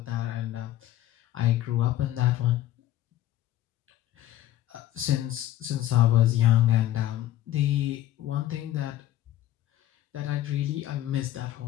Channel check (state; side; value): quieter; right; 13.4 dB